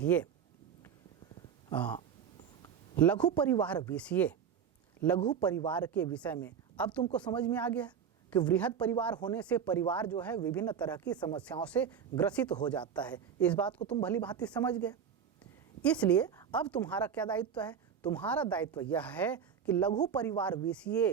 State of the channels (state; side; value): quieter; left; 7.6 dB